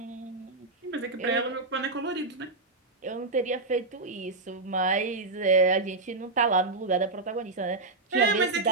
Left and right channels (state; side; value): quieter; left; 3.4 dB